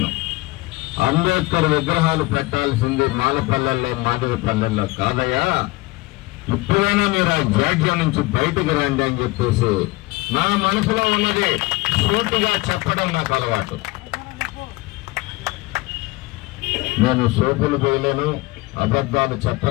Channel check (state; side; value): quieter; right; 21.9 dB